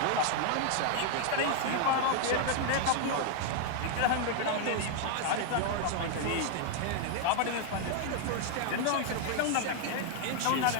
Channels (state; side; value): different; both; correlation 0.00